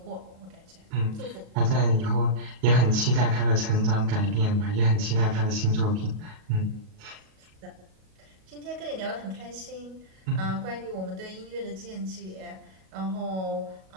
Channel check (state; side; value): late; left; 37 ms